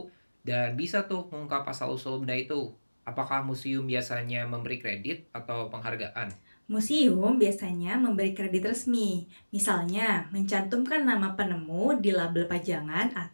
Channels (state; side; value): inverted; both; correlation -1.00